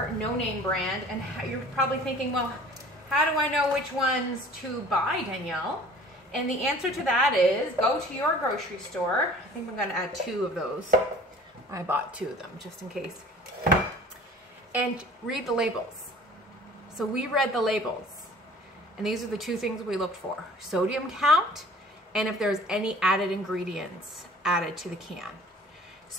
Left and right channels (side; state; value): both; normal; correlation 0.48